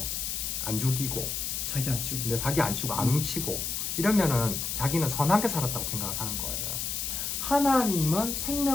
안 죽이고 사기 안 치고. 근데 사기 안 치고 안 훔치고 이러면은 자기는 선하게 살았다고 생각을 하는 거예요. 하나님은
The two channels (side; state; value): left; noise; hiss, 2 dB below the sound